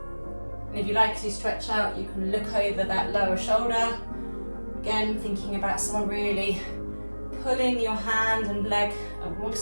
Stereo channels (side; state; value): both; inverted; correlation -1.00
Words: And if you like to stretch out, you can look over that lower shoulder. Again, thinking about someone really pulling your hand and leg in